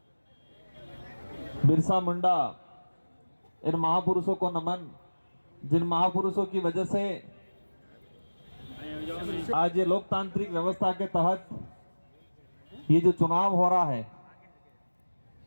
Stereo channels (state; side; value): inverted; both; correlation -1.00